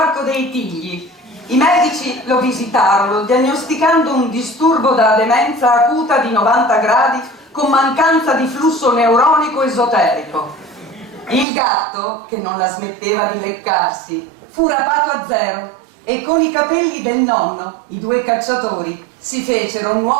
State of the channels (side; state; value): left; drops out; at 11.5 s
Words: dei Tigli. I medici lo visitarono, diagnosticando un disturbo da demenza acuta di 90 gradi con mancanza di flusso neuronico esoterico. Il gatto, che non la smetteva di leccarsi, fu rapato a zero e con i capelli del nonno, i due cacciatori, si fecero un